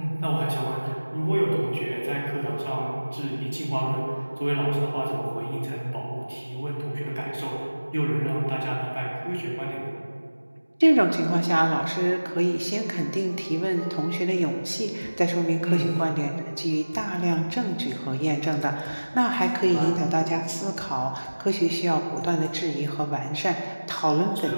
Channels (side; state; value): both; inverted; correlation -1.00